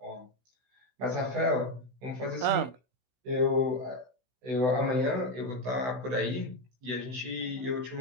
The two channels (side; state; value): left; late; 16 ms